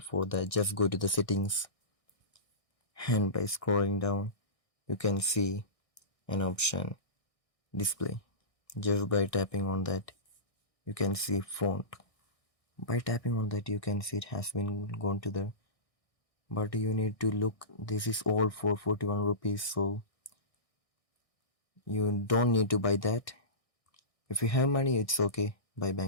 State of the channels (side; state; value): right; late; 1.6 ms